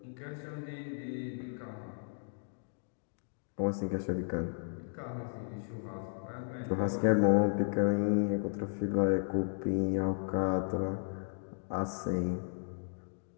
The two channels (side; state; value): right; silent; digital silence